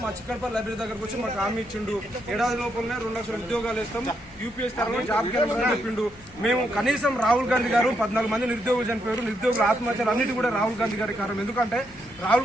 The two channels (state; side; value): noise; left; hum, 25 dB below the sound